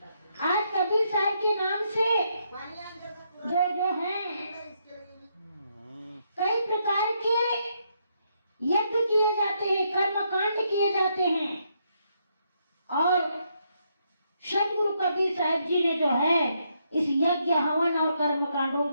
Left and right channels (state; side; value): inverted; both; correlation -0.77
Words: आज कबीर साहब के नाम से जो हैं कई प्रकार के यज्ञ किए जाते हैं, कर्मकांड किए जाते हैं और सदगुरु कबीर साहब जी ने जो है इस यज्ञ हवन और कर्मकांडों